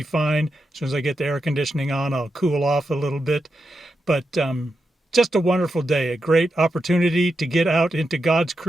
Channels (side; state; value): both; normal; correlation 0.87